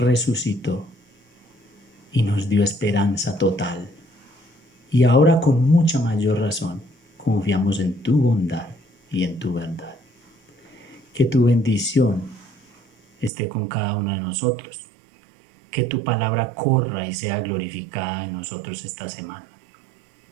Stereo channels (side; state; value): left; drops out; at 13.3 s